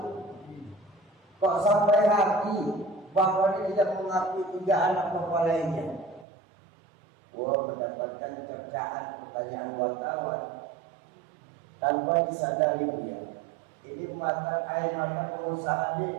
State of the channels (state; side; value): drops out; left; at 6.2 s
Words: Kok sampai hati Bapak ini tidak mengakui 3 anak Bapak lainnya? Mendapatkan cercaan pertanyaan wartawan tanpa disadari dia. Ini air mata pengusaha